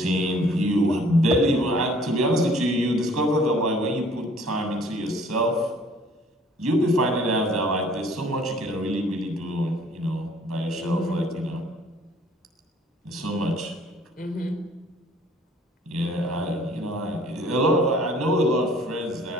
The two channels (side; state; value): both; normal; correlation 0.56